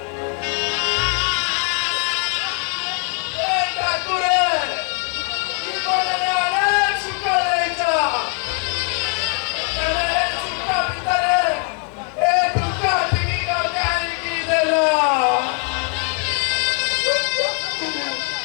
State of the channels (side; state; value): right; quieter; 38.6 dB